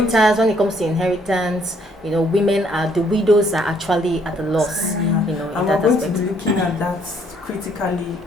When it comes to inheritance, you know, the widows are actually at a loss. You know, in and that we're going aspect. to be looking at that critically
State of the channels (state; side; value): normal; both; correlation 0.66